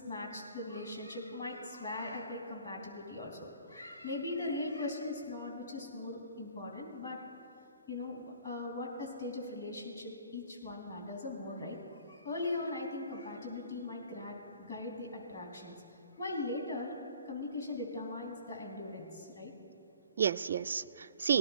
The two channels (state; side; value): inverted; both; correlation -0.53